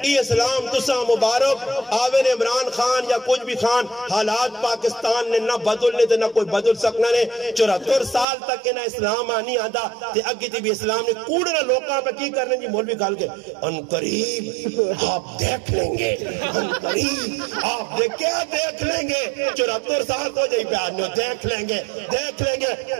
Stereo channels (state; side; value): drops out; left; at 8.2 s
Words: یہ اسلام تسا مبارک آوین عمران خان یا کچھ بھی خان حالات پاکستان نے نہ بدلنے تھے نہ کوئی بدل سکنا نے 74 سال تک کے نہ اسلام آنی آدھا تے اگی تی بھی اسلام نے کوڑنا لوکاں پہ کی کرنے جی مولوی کھال کے ان قریب آپ دیکھ لیں گے ان قریب آپ کیا دیکھ لیں گے 74 سال تو جائی پیارنے دیکھ لیں گے